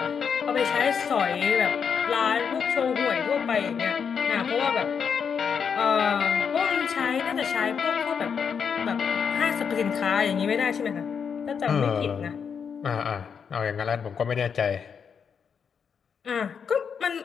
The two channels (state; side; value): quieter; right; 6.7 dB